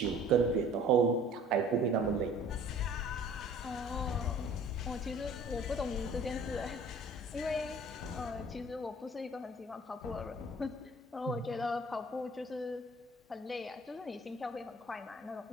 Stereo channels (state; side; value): normal; both; correlation 0.50